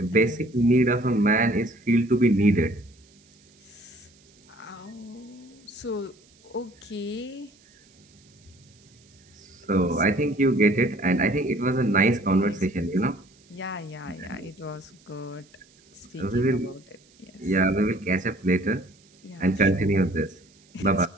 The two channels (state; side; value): noise; right; hiss, 30 dB below the sound